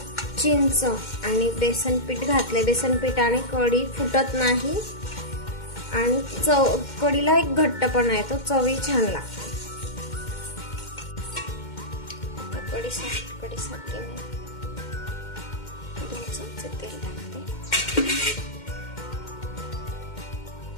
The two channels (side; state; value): right; late; 2.1 ms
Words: चिंच आणि बेसन पीठ घातले। बेसन पीठाने कढी फुटत नाही आणि कढीला एक घट्टपणा येतो, चवी छान लागते। कढीसाठी मी 2 चमचे तेल टाकते।